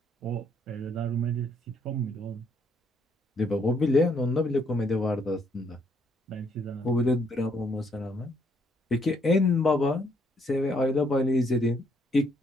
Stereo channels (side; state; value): both; normal; correlation 0.70